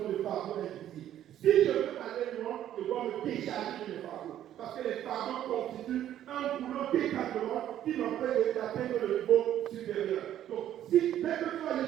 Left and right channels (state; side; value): quieter; left; 11.5 dB